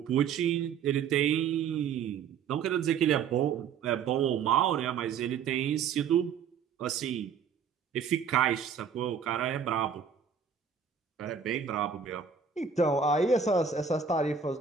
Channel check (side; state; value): left; quieter; 6.7 dB